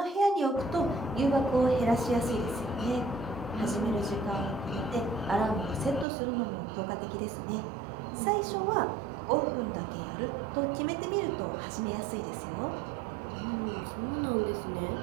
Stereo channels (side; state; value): left; drops out; at 6.1 s